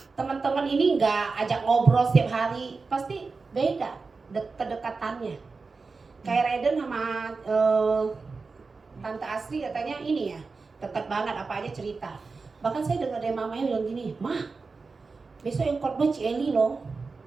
teman-teman ini nggak ajak ngobrol setiap hari, pasti beda kedekatannya. Kayak Raiden sama Tante Asri katanya ini ya, dekat banget apa aja cerita. Bahkan saya dengar dari mamanya bilang gini, "Mah, besok yang khotbah Ci loh."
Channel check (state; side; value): quieter; left; 4.3 dB